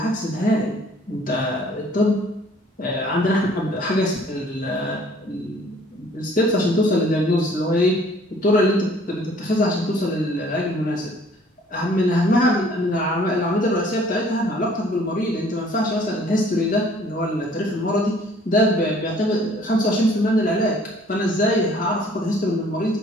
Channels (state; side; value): normal; both; correlation 0.56